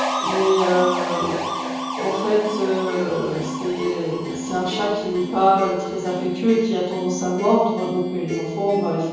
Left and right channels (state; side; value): identical; both; correlation 1.00